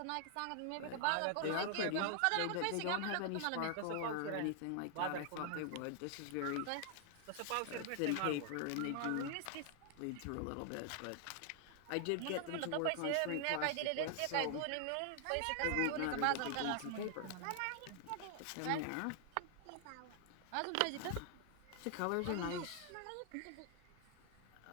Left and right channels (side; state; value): both; different; correlation 0.00